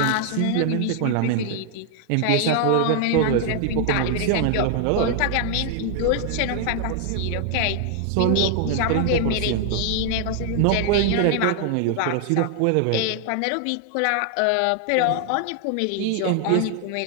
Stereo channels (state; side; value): different; both; correlation 0.00